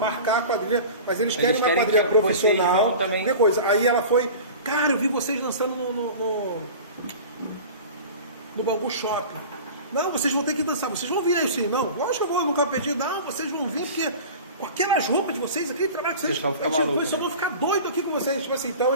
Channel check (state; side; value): inverted; both; correlation -0.36